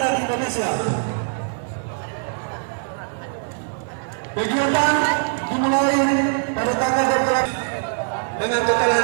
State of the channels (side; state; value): left; silent; 57 dB below the other